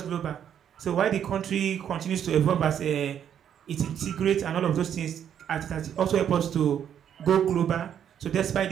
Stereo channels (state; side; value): quieter; left; 9.2 dB